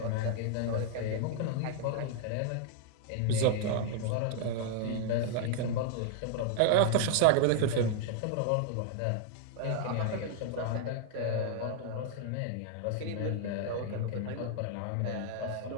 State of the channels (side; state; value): both; different; correlation 0.00